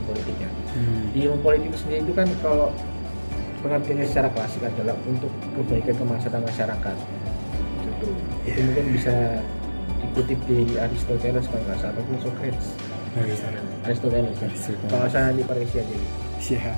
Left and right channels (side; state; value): both; inverted; correlation -1.00